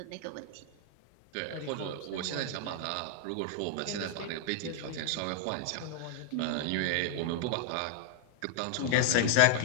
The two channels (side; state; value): both; different; correlation -0.01